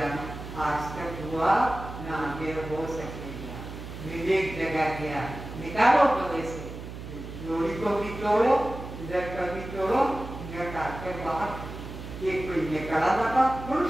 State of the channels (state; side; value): noise; right; hum, 10 dB below the sound